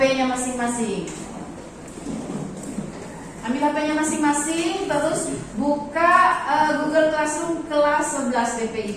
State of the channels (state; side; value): identical; both; correlation 1.00